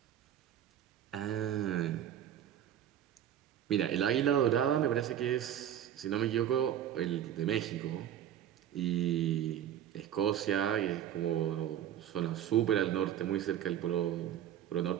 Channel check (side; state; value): left; quieter; 10.5 dB